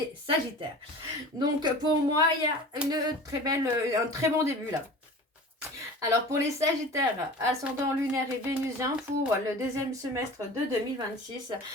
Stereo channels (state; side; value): normal; both; correlation 0.38